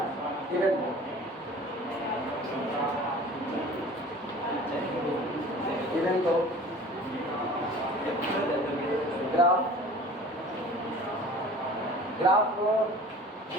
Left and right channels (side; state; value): both; normal; correlation 0.44